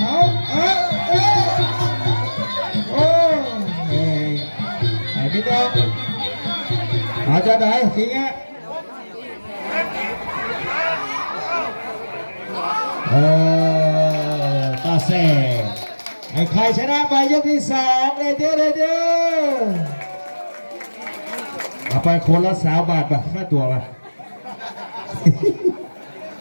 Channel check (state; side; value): inverted; both; correlation -1.00